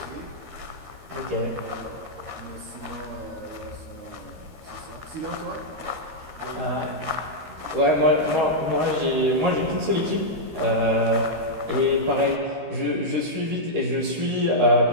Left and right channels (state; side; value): late; left; 13 ms